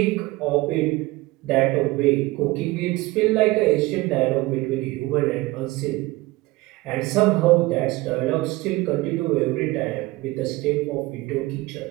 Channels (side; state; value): left; quieter; 20.3 dB